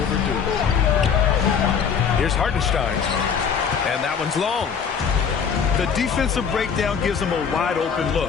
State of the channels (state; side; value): quieter; right; 6.8 dB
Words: Here's Hartenstein. And that one's long. The defensive breakdown gives him a wide open